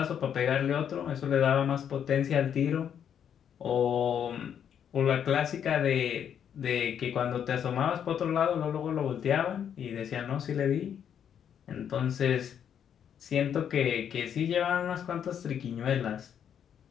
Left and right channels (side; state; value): right; quieter; 8.7 dB